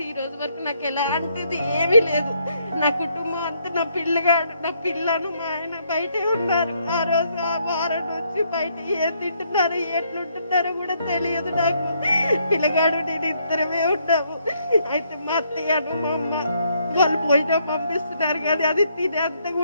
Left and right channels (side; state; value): both; inverted; correlation -0.72